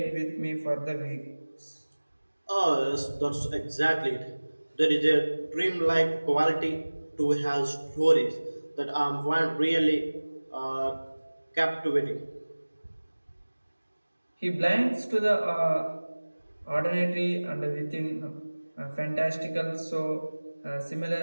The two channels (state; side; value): inverted; both; correlation -1.00